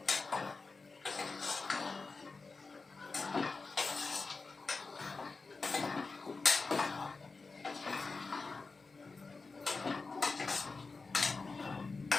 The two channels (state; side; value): quieter; right; 4.1 dB